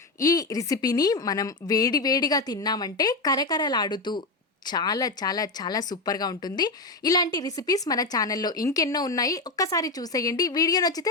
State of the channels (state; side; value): quieter; right; 3.2 dB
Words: ఈ రెసిపీని మనం వేడివేడిగా తిన్నామంటే కరకరలాడుతూ చాలా చాలా చాలా సూపర్గా ఉంటుంది. ఇలాంటి రెసిపీస్ మన ఛానల్లో ఇంకెన్నో ఉన్నాయి. ఒక్కసారి చూసేయండి. వీడియో